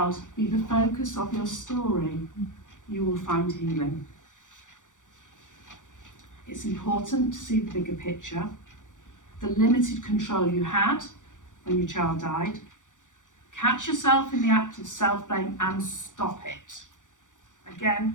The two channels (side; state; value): right; late; 0.87 ms